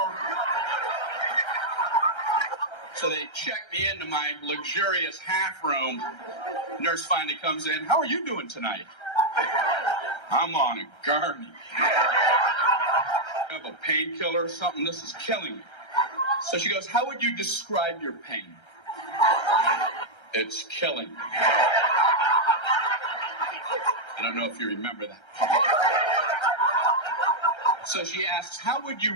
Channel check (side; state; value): right; late; 1.3 ms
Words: So they check me into my luxurious half room. Nurse finally comes in. How are you doing tonight? I'm on a gurney. I have a painkiller or something. This is killing me. So she goes, how would you describe your pain? It's killing me. I don't know if you remember that. So she asks, how would you